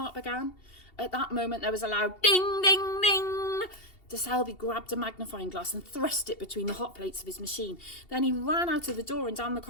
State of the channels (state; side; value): late; right; 2.7 ms